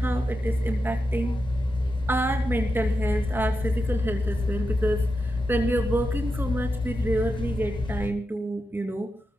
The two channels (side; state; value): both; normal; correlation 0.88